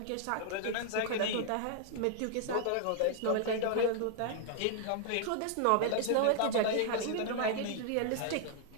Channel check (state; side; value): different; both; correlation -0.01